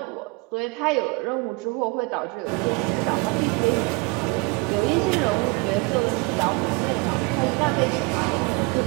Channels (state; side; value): quieter; left; 27.7 dB